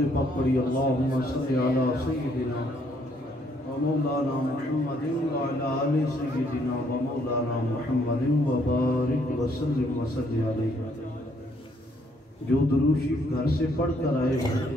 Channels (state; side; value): normal; both; correlation 0.68